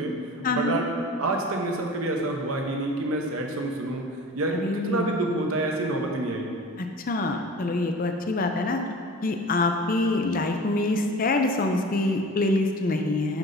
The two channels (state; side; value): normal; both; correlation 0.40